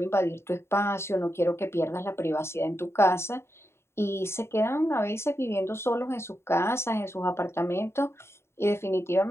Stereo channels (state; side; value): late; right; 0.12 ms